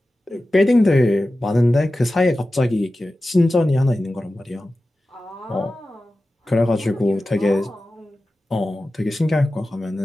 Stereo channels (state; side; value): normal; both; correlation 0.94